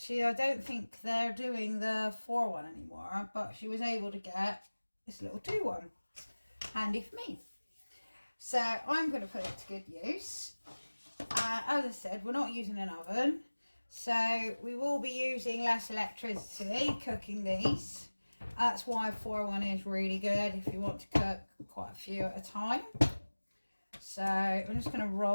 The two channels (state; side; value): inverted; both; correlation -1.00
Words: don't think they're doing the 4-1 anymore, but she was able to get this little 2-1. Handy for me. So I'm going to put it to good use. As I said, we're not using an oven, so we will be using less electricity cooking these. That's why 4-1 is really good if you want to cook quite a few at a time. So I'm just going to